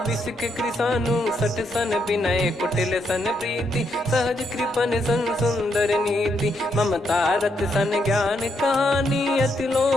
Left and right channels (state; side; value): normal; both; correlation 0.78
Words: बिसक कृसानु। 60 सन विनय कुटिल सन प्रीति, सहज कृपन सन सुंदर नीति। ममता रत सन ज्ञान कहानी, अति